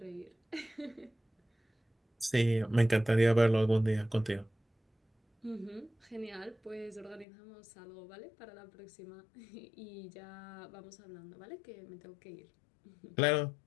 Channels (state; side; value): drops out; right; at 7.2 s